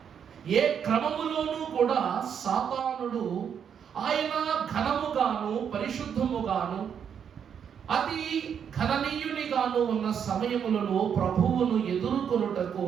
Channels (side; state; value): left; quieter; 7.9 dB